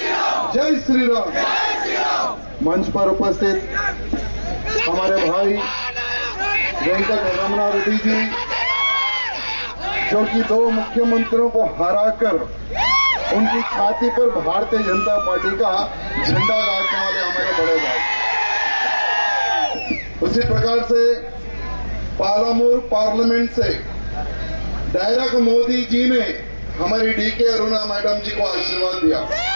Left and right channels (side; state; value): both; inverted; correlation -1.00